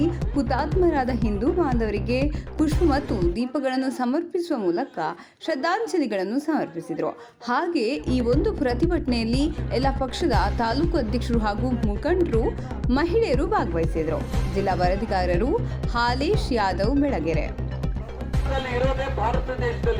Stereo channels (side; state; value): both; identical; correlation 1.00